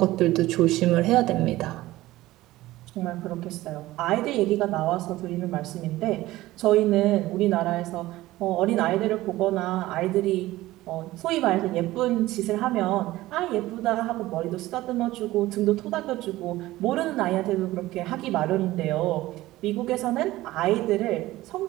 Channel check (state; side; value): quieter; left; 17.1 dB